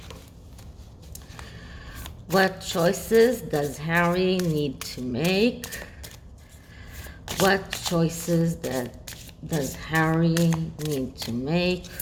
What choices does Harry need to make? What choices does Harry need to make?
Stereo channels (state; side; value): identical; both; correlation 1.00